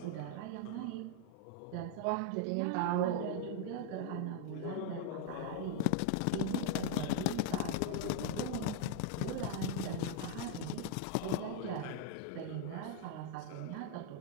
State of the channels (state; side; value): different; both; correlation 0.00